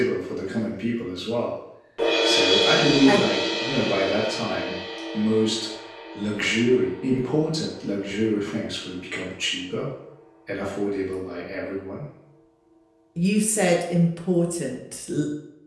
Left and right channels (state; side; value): identical; both; correlation 1.00